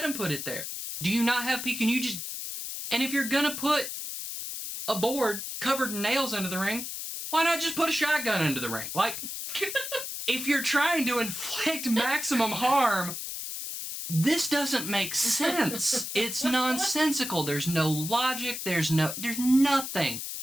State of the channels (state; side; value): noise; left; hiss, 6 dB below the sound